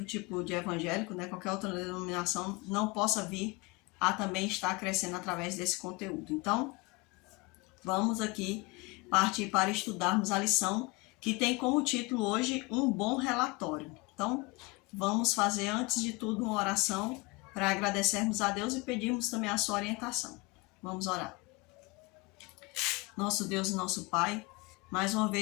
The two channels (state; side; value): quieter; right; 25.7 dB